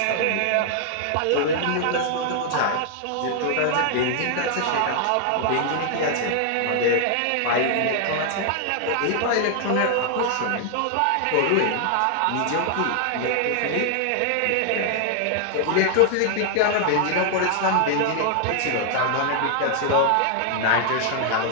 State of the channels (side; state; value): both; different; correlation 0.00